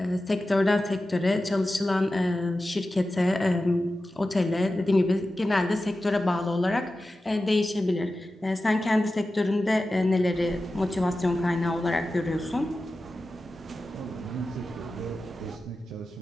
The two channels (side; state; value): both; normal; correlation 0.94